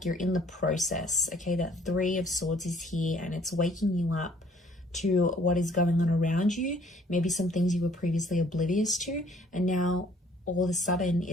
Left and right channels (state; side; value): normal; both; correlation 0.59